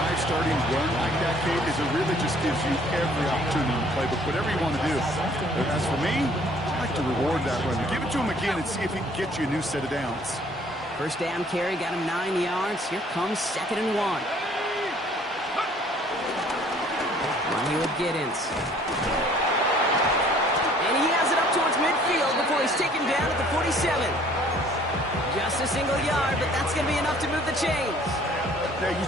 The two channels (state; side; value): normal; both; correlation 0.57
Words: starting run like that, Kate, is it really just gives you every opportunity in the playbook, whatever you want to do. But as for me, I like to reward that run. Give it to him again and see if he can get you a new set of downs. 1st down carry, got him 9 yards. Here comes 2nd and 1. One here with Giddens. And he has it up towards midfield before he's taken down at the 47. Just a single yard, but that's going to be enough to move the chains. Now,